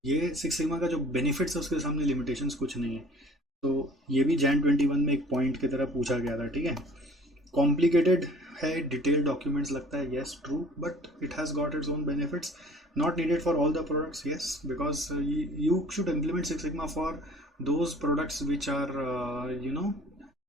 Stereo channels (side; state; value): both; normal; correlation 0.50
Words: ये सिक्स सिग्मा का जो बेनिफिट्स है उसके सामने लिमिटेशंस कुछ नहीं है। तो ये भी जैन 21 में एक पॉइंट की तरह पूछा गया था, ठीक है। कॉम्प्लिकेटेड है, डिटेल डॉक्यूमेंट्स लगता है, yes true, but it has got its own benefits, not needed for all the products, yes, because you should implement six sigma for those products which are